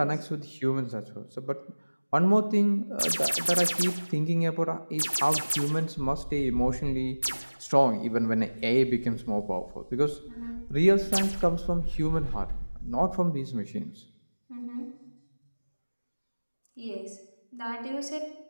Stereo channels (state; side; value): inverted; both; correlation -1.00